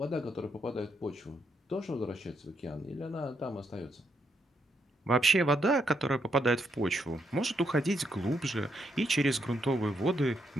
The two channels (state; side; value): normal; both; correlation 0.78